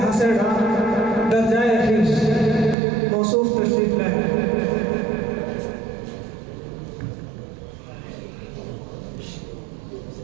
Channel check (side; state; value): left; drops out; at 2.8 s